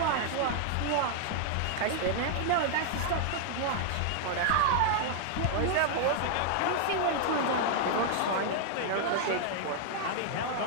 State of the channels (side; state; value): both; different; correlation 0.00